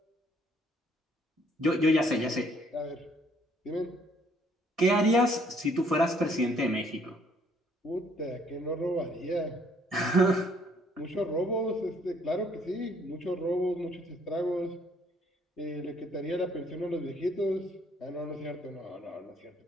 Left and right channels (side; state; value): both; normal; correlation 0.64